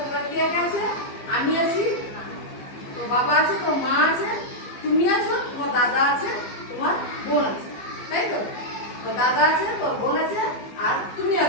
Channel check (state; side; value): late; right; 15 ms